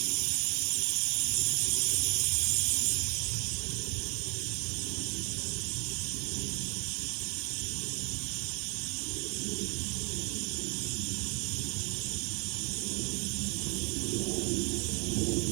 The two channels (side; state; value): left; quieter; 33.1 dB